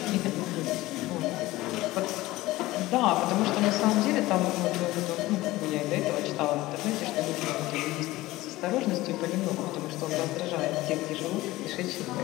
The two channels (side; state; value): right; quieter; 18.1 dB